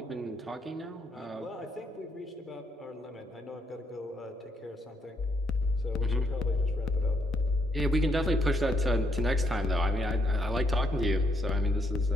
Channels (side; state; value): both; normal; correlation 0.75